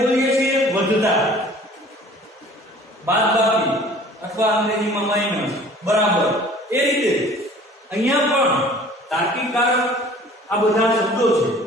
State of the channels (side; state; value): both; normal; correlation 0.49